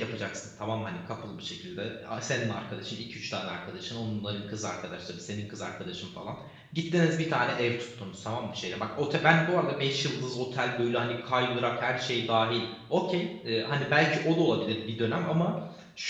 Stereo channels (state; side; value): identical; both; correlation 1.00